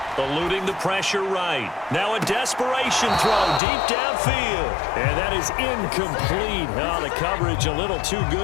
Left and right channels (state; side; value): drops out; right; at 3.6 s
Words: Eluding the pressure right. Now a desperation throw deep downfield. And that is incomplete. Oh, the coverage a little too